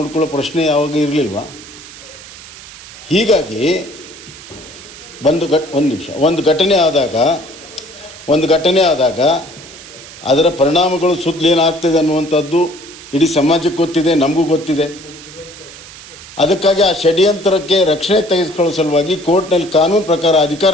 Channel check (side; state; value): right; noise; hiss, 17 dB below the sound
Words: ಪ್ರಶ್ನೆ ಯಾವಾಗ ಇರಲಿಲ್ವಾ? ಹೀಗಾಗಿ ಒಂದು ಘಟನೆ ಆದಾಗ ಅದರ ಪರಿಣಾಮಗಳು ಸುತ್ತಲೇನಾಗ್ತಿದೆ ಅನ್ನುವಂಥದ್ದು ಇಡೀ ಸಮಾಜಕ್ಕೆ ಗೊತ್ತಿದೆ, ನಮಗೂ ಗೊತ್ತಿದೆ. ಅದಕ್ಕಾಗಿ ಆ ಷಡ್ಯಂತ್ರಕ್ಕೆ ರಕ್ಷಣೆ ತೆಗೆದುಕೊಳ್ಳೋ ಸಲುವಾಗಿ ಕೋರ್ಟ್ನಲ್ಲಿ ಕಾನೂನು ಪ್ರಕಾರ